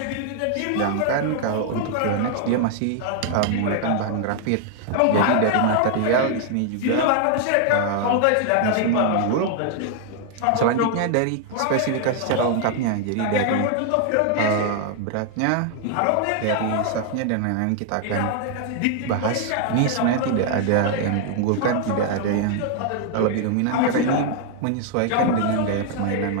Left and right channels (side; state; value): both; different; correlation 0.00